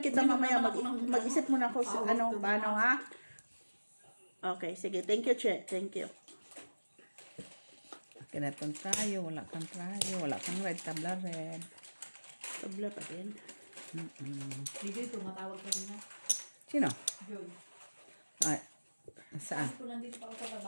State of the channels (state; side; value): inverted; both; correlation -1.00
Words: kita mamaya. Mag-isip muna ako sa paano ha? Okay, sige. Thank you, Che. Thank you. Kinatong tayo, wala kang tayo, wala kang red, tabla red. Tabla pa din. Hindi, tumatawag ka rin na. Sino? Joy. Ay, saan? Kung nandito pa ako sa